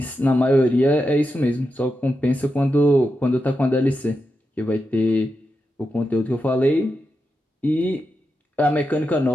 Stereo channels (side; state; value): both; normal; correlation 0.88